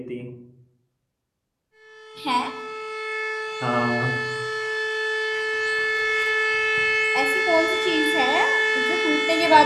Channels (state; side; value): identical; both; correlation 1.00